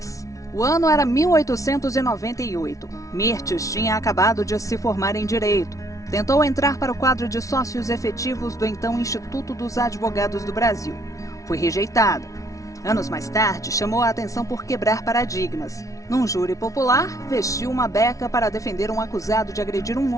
O ano era 1898. Mirtes tinha acabado de se formar em Direito. Tentou entrar para o quadro de sócios efetivos do então Instituto dos Advogados do Brasil. Foi rejeitada. Anos mais tarde, chamou a atenção por quebrar paradigmas. Num júri popular, vestiu uma beca para defender um acusado de agredir um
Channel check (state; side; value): late; right; 0.16 ms